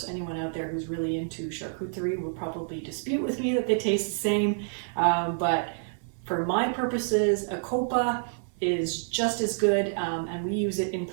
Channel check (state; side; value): silent; left; 59 dB below the other